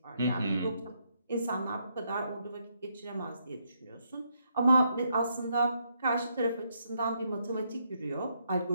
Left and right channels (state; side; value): inverted; both; correlation -0.75